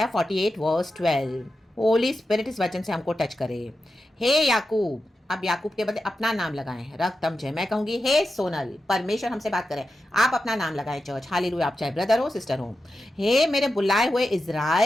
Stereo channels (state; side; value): normal; both; correlation 0.90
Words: 48 वर्स 12। होली स्पिरिट इस वचन से हमको टच करे। हे याकूब, अब याकूब के बदले अपना नाम लगाएं, रक्तम जय। मैं कहूंगी हे सोनल, परमेश्वर हमसे बात करें, आप अपना नाम लगाएं चर्च, हालेलुया। आप चाहे ब्रदर हो सिस्टर हो। हे मेरे बुलाए हुए